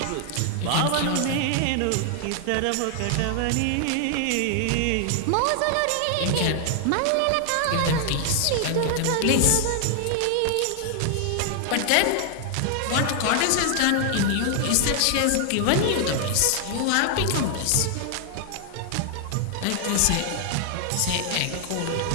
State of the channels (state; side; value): different; both; correlation 0.00